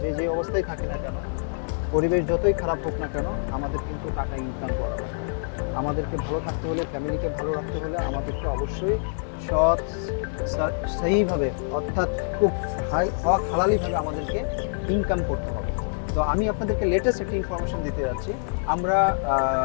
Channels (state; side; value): silent; right; digital silence